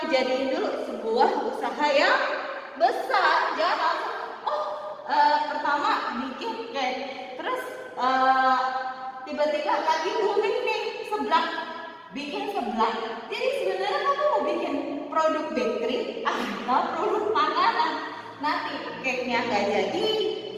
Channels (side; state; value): both; identical; correlation 1.00